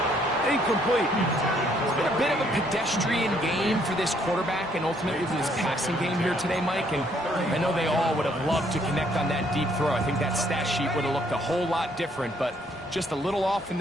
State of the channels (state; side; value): normal; both; correlation 0.67